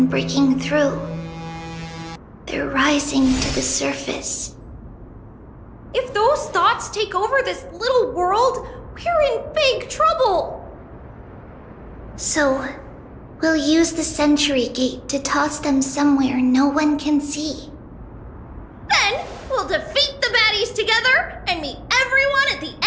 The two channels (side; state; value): both; identical; correlation 1.00